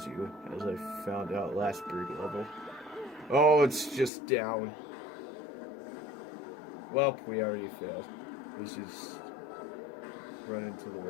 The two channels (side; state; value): right; drops out; at 4.1 s